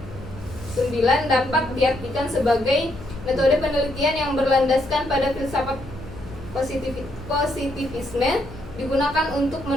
dapat diartikan sebagai metode penelitian yang berlandaskan pada filsafat positivisme, digunakan untuk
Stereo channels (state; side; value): noise; left; hum, 16 dB below the sound